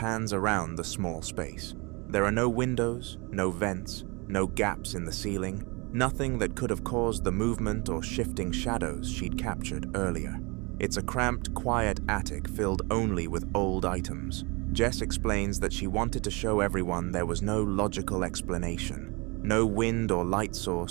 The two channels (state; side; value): quieter; left; 28.3 dB